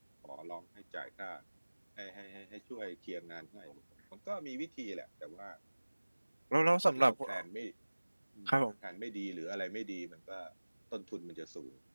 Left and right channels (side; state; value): both; inverted; correlation -1.00